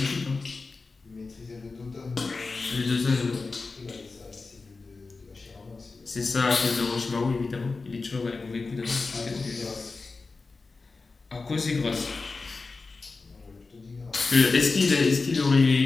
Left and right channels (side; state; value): right; quieter; 4.0 dB